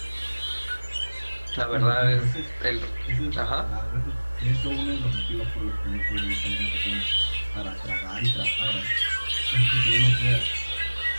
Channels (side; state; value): both; inverted; correlation -1.00